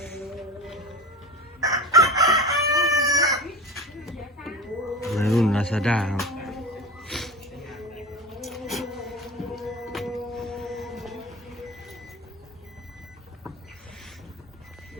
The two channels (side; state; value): both; normal; correlation 0.31